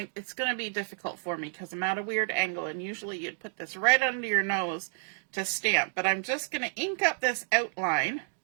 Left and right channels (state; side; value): silent; left; digital silence